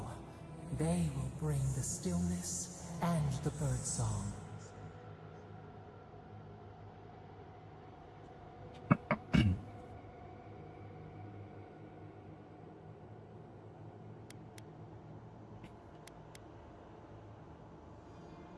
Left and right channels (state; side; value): identical; both; correlation 1.00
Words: They will bring the stillness and the birdsong.